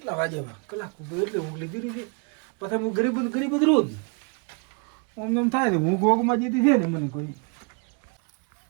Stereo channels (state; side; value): quieter; left; 35.4 dB